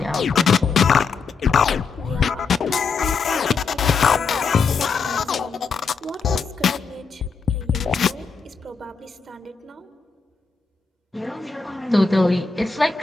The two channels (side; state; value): right; quieter; 5.0 dB